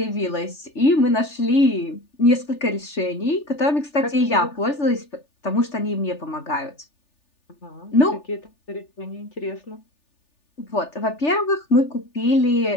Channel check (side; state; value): right; late; 3.4 ms